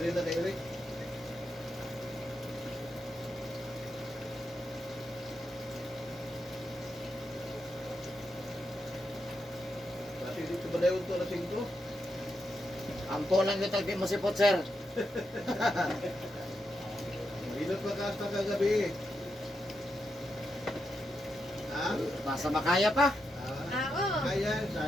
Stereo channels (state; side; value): normal; both; correlation 0.84